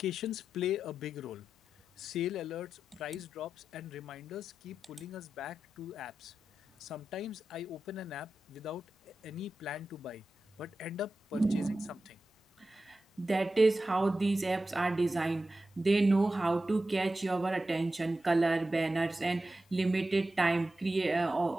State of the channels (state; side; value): normal; both; correlation 0.92